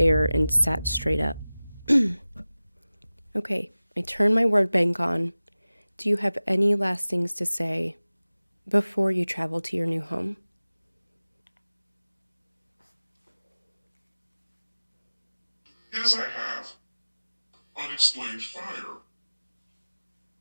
and sat straight up." Okay, I turned my word bank on. Do you have any last things to say before you travel to your new home? Yes, I have. Unexplained fire.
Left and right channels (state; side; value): inverted; both; correlation -0.98